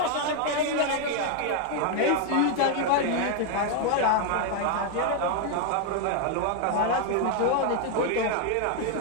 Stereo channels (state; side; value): different; both; correlation 0.00